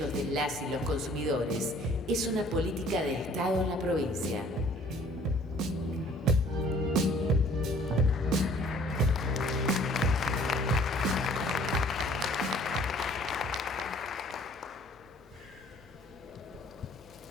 de las y los consumidores es una política de Estado en la provincia.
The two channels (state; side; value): normal; both; correlation 0.55